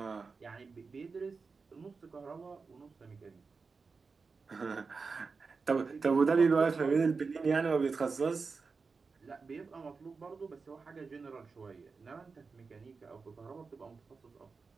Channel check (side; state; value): left; quieter; 4.7 dB